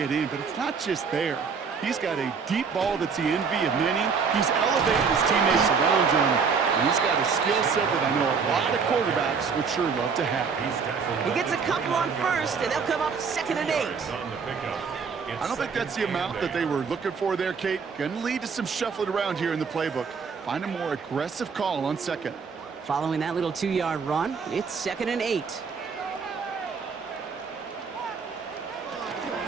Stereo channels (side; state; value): left; quieter; 5.7 dB